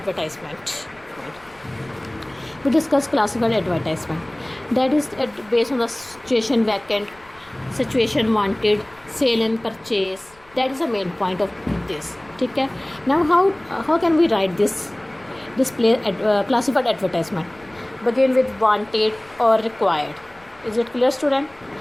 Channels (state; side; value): noise; left; rumble, 28 dB below the sound